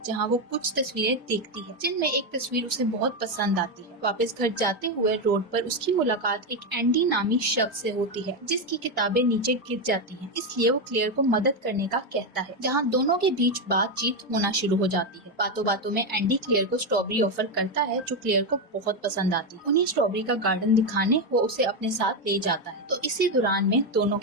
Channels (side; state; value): both; normal; correlation 0.08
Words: जहाँ वो कुछ तस्वीरें देखती है जिनमें एक तस्वीर उसे बहुत पसंद आती है। वापस घर जाते हुए रोड पर उसकी मुलाकात एक एंडी नामी शख्स से होती है जिसकी किताबें नीचे गिर जाती हैं। इसलिए वो क्लेयर को मदद करने का कहता है जहाँ दोनों के बीच बातचीत होना शुरू हो जाती है। बातों बातों में एंडी क्लेयर को स्ट्रॉबेरी ऑफर करता है जो क्लेयर को बहुत पसंद आती है। उन्हें स्ट्रॉबेरी का गार्डन दिखाने वो उसे अपने साथ ले जाता है। तो इसी दौरान में दोनों